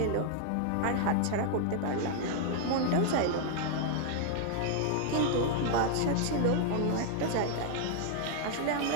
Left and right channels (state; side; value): different; both; correlation 0.00